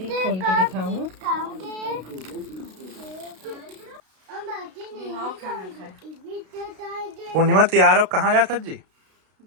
खोल के दिखाऊं। खाना खाए पूर्णिमा तैयार हो कहाँ जाता जी?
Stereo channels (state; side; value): late; left; 32 ms